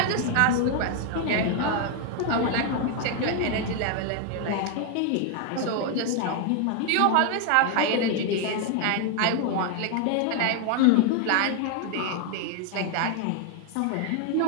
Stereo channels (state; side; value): different; both; correlation 0.01